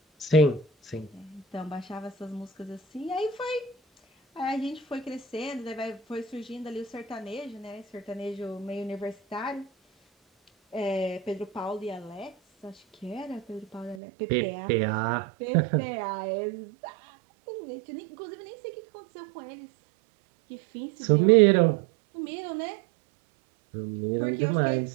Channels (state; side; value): drops out; left; at 14.0 s